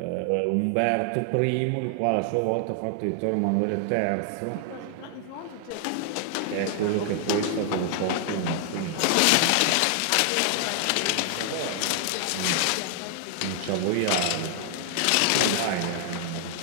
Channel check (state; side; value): different; both; correlation 0.00